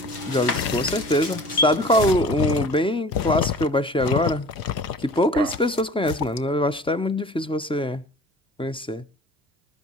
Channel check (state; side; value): normal; both; correlation 0.44